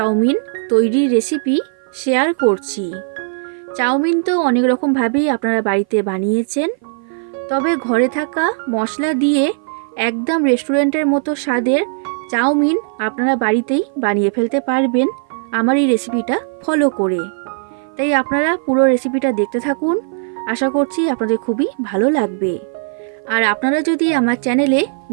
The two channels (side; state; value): left; silent; 56 dB below the other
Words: তৈরির রেসিপি শেয়ার করছি। চাউমিন তো অনেক রকমভাবেই আপনারা বাড়িতে বানিয়েছেন, তবে ঘরে থাকা মশলা দিয়ে একদম রেস্টুরেন্টের মতো স্বাদের চাউমিন আপনারা বাড়িতেই বানিয়ে ফেলতে পারবেন আমার এই রেসিপিটা ফলো করে। তাই আপনারা পুরো রেসিপিটা দেখতে থাকুন, আশা করছি আপনাদের খুবই ভালো লাগবে। আর আপনারা যদি আমার চ্যানেলে